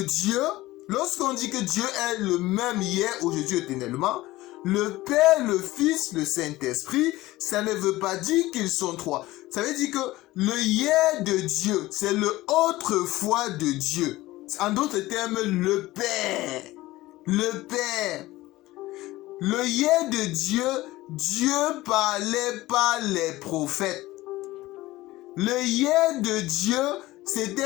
Dieu, lorsqu'on dit que Dieu est le même hier, aujourd'hui, éternellement, le Père, le Fils, le Saint-Esprit, ça ne veut pas dire qu'ils sont trois. Ça veut dire que le hier de Dieu, c'est le autrefois de Dieu. En d'autres termes, le Père. Le Père. Le hier de Dieu, Dieu parlait par les prophètes. Le hier de Dieu,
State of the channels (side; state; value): right; quieter; 18.0 dB